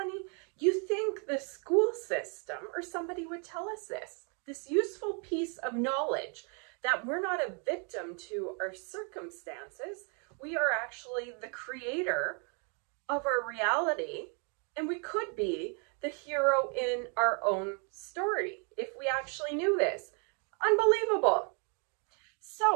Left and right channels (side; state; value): left; quieter; 38.4 dB